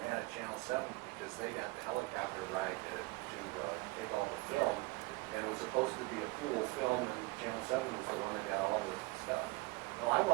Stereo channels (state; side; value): quieter; left; 23.9 dB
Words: at Channel 7 because they got the helicopter ride to take all the film, and it was supposed to be a cool film, and Channel 7 was the one that got all the stuff. No, I